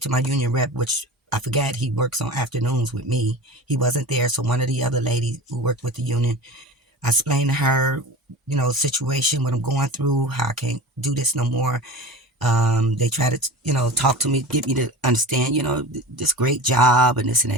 to my union rep, which I forgot he works on afternoons with me. He wasn't there, so one of the other ladies who worked with the union, I explained to her, situation, what I'm going through, how I can't do this no more. They try to, talk to me, get me to understand, this great job and this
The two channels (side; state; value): both; normal; correlation 0.33